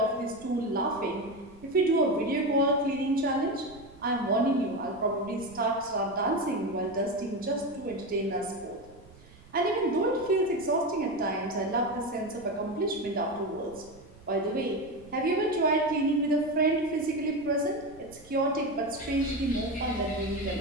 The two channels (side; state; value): right; noise; rumble, 23 dB below the sound